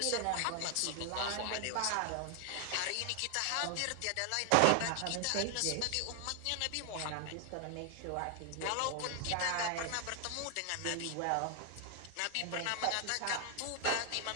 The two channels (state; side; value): different; both; correlation 0.00